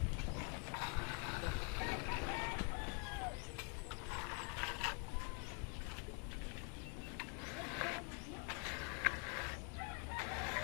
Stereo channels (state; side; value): quieter; right; 36.9 dB